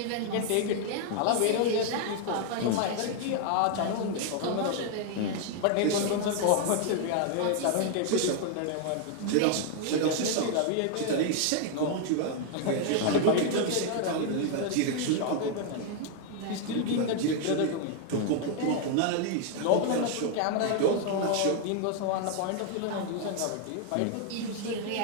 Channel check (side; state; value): both; different; correlation 0.00